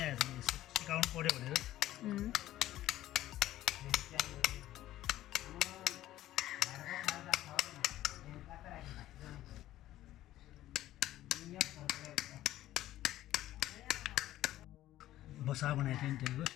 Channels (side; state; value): right; quieter; 14.2 dB